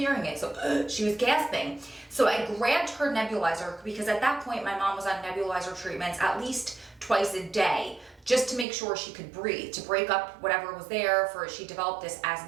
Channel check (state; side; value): drops out; left; at 8.7 s